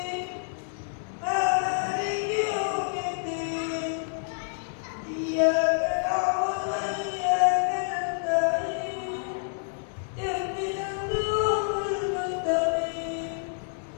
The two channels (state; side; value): silent; right; digital silence